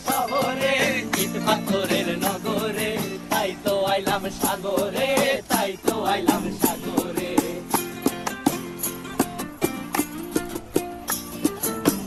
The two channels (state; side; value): identical; both; correlation 1.00